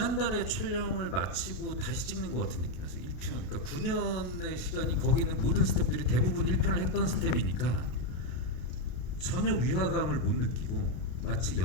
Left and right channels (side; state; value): right; late; 32 ms